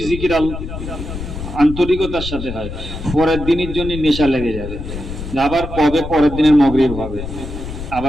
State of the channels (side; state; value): left; noise; rumble, 8 dB below the sound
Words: জিকির আন্তরিকতার সাথে হয়, পরের দিনের জন্য নেশা লেগে যাবে, আবার কবে পরের দিনের মাগরিব হবে,